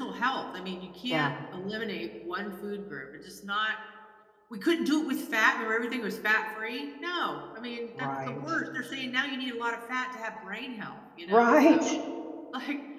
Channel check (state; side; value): identical; both; correlation 1.00